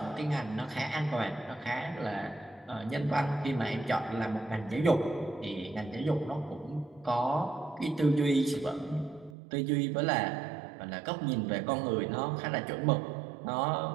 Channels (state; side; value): drops out; left; at 9.3 s